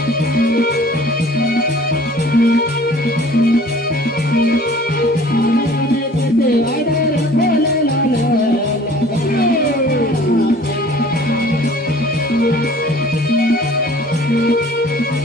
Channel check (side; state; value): both; normal; correlation 0.50